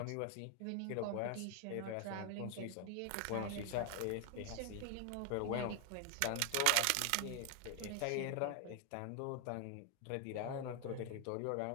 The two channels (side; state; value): both; different; correlation 0.00